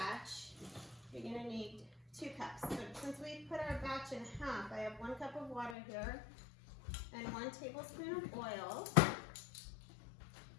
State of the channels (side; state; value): right; drops out; at 5.8 s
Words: you're going to need 2 cups. So since we put our batch in half, I have 1 cup of water here and 1 tablespoon of oil.